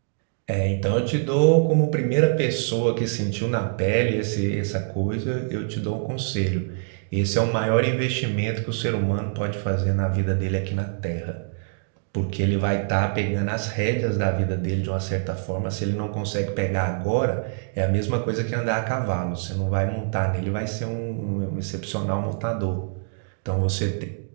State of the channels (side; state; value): left; silent; digital silence